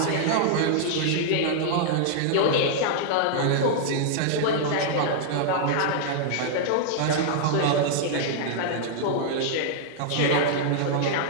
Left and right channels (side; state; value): both; different; correlation -0.01